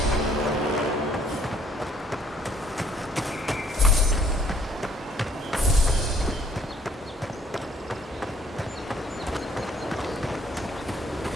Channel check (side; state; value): both; normal; correlation 0.63